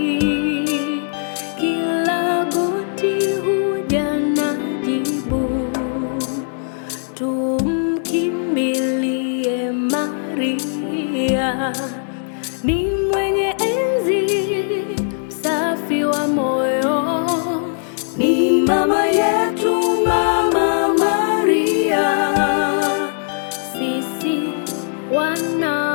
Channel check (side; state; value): right; silent; digital silence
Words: Kila goti huja na jibu, tumkimbilie Maria. Ni mwenye enzi, msafi wa moyo, ni mama yetu, Mama Maria. Sisi